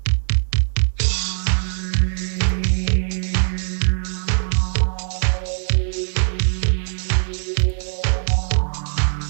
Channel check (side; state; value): left; silent; 65 dB below the other